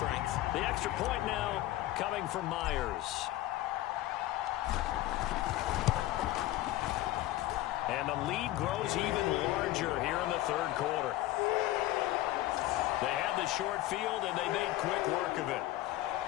The extra point now coming from Myers. And the lead grows even larger here in the 3rd quarter. They had the short field, and they made quick work of it.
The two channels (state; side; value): quieter; right; 15.7 dB